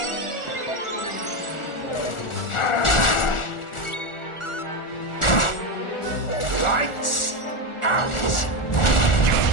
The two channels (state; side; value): late; right; 1.4 ms